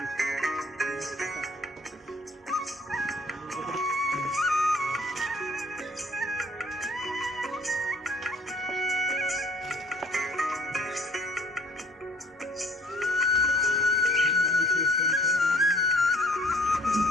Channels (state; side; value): normal; both; correlation 0.55